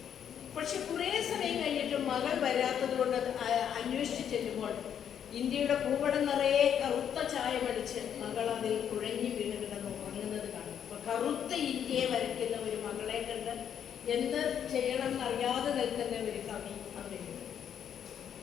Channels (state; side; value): quieter; right; 8.9 dB